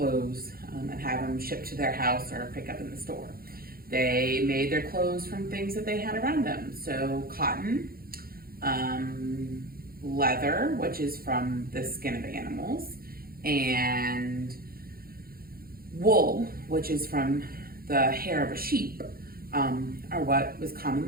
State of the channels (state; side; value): late; left; 0.43 ms